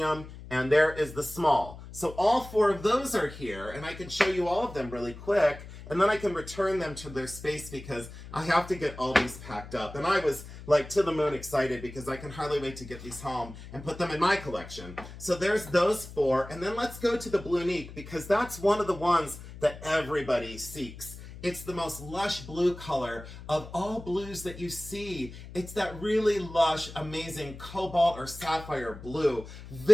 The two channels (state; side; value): noise; left; hum, 14 dB below the sound